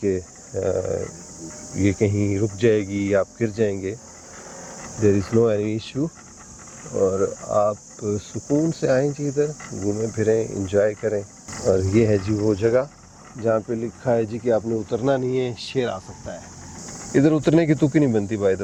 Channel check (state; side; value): identical; both; correlation 1.00